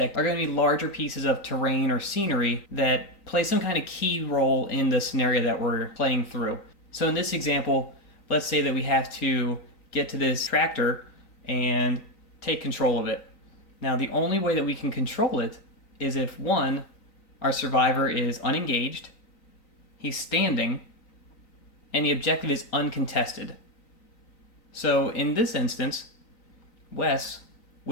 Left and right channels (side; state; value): right; late; 3.9 ms